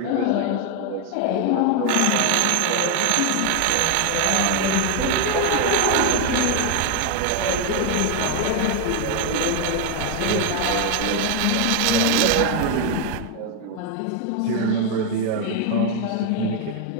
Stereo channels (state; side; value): different; both; correlation 0.01